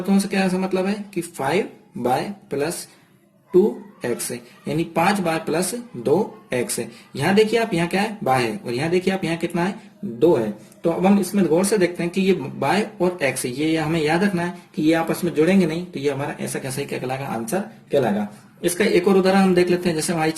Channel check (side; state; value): both; identical; correlation 1.00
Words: से क्या मतलब है कि 5y प्लस 2x, यानी 5y प्लस 2x। यहाँ देखिए आप, यहाँ क्या है, y है, और यहाँ देखिए आप, यहाँ कितना है, 2 है। तो अब हम इसमें गौर से देखते हैं कि ये y और x, ये हमें याद रखना है कि ये आपस में जुड़ेंगे नहीं, तो ये हमारा ऐसा कैसा ही क्या कहलाएगा, आंसर कहलाएगा। इसका एक और उदाहरण हम देख लेते हैं। जैसे बाई